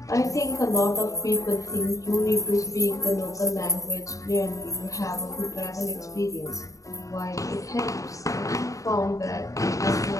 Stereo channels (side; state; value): right; late; 0.16 ms